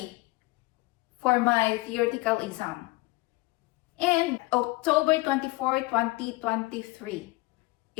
for my theoretical exam. And October 24, 2023,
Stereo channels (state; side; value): quieter; right; 22.4 dB